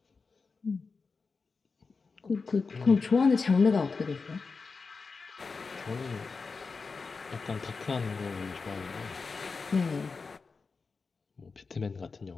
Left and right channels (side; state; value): right; quieter; 4.6 dB